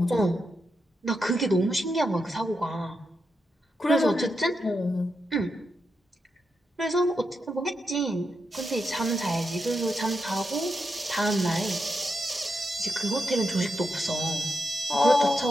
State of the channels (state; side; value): normal; both; correlation 0.86